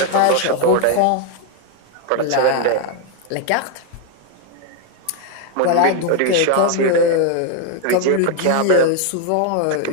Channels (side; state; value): both; different; correlation 0.01